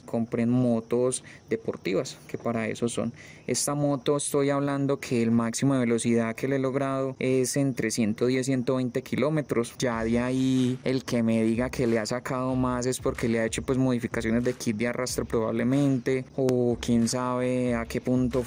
compren motos deportivas, que para eso son. Esta moto, estoy hablando que el máximo de velocidad que le he logrado es entre 110 y 120 kilómetros. Ya de ahí el que me diga que le ha sacado más es porque le ha hecho pues modificaciones de kit de arrastre probablemente, o quién sabe a qué punto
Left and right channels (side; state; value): both; identical; correlation 1.00